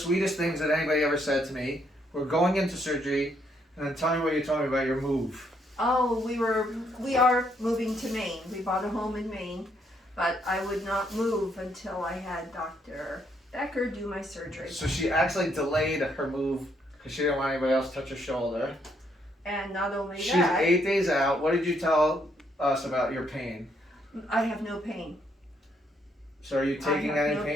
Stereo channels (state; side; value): normal; both; correlation 0.73